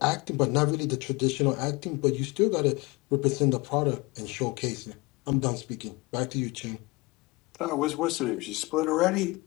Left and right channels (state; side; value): quieter; right; 24.2 dB